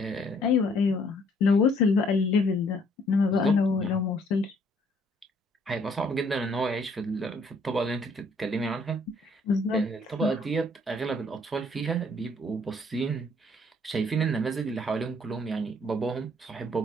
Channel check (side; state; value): both; normal; correlation 0.64